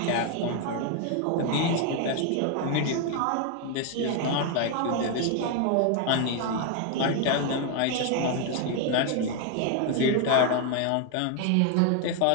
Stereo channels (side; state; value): both; different; correlation 0.01